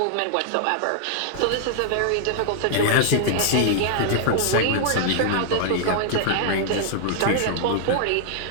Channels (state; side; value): different; both; correlation -0.01